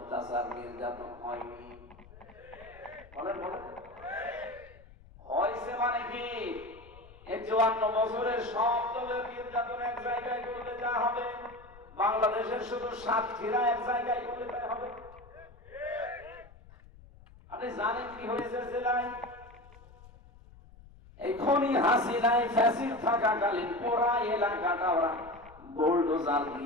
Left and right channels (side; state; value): left; noise; rumble, 22 dB below the sound